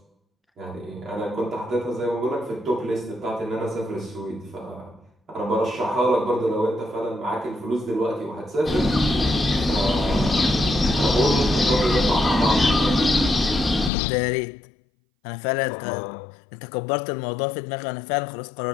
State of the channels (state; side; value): drops out; right; at 13.9 s